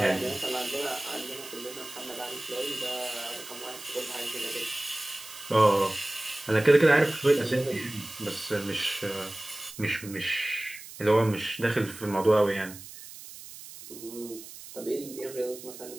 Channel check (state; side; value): noise; right; hiss, 15 dB below the sound